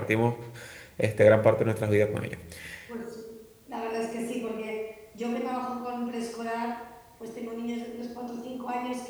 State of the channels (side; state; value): both; identical; correlation 1.00